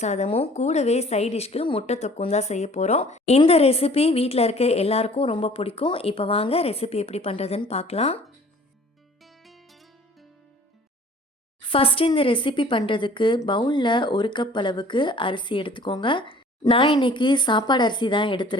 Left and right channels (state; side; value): normal; both; correlation 0.50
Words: சாதமும் கூடவே சைட் டிஷ்க்கு முட்டை தொக்கும் தான் செய்ய போகிறோம். இந்த ரெசிபி வீட்டில் இருக்க எல்லாருக்கும் ரொம்ப பிடிக்கும். இப்போ வாங்க ரெசிபி எப்படி பண்ணுறதுன்னு பார்க்கலாம். ஃபஸ்ட்டு இந்த ரெசிபி பண்ணுறதுக்கு பவுலில் 1 கப் அளவுக்கு அரிசி எடுத்துக்கோங்க. நான் இன்றைக்கி சாப்பாடு அரிசி தான்